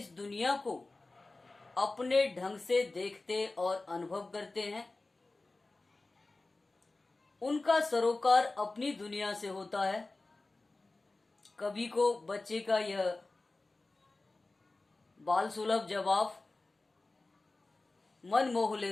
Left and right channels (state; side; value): quieter; right; 3.2 dB